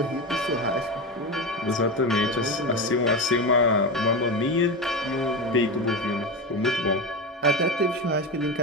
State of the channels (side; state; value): both; normal; correlation 0.19